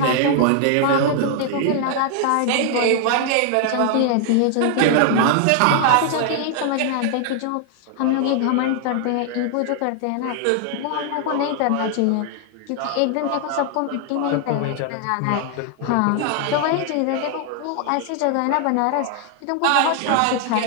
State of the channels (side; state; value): both; different; correlation 0.00